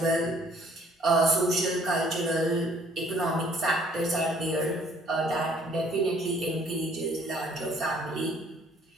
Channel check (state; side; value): normal; both; correlation 0.60